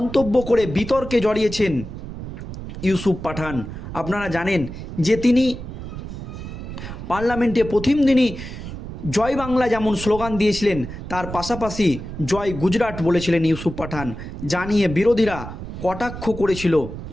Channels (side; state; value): right; noise; rumble, 9 dB below the sound